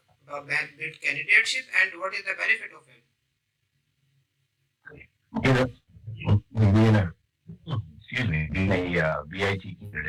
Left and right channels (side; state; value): both; identical; correlation 1.00